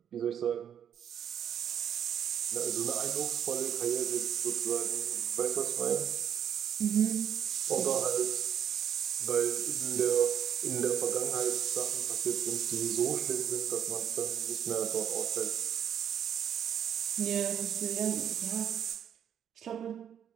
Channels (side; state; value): left; quieter; 9.1 dB